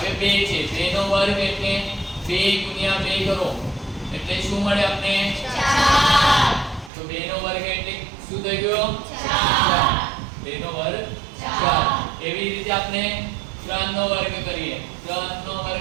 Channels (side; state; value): left; drops out; at 6.9 s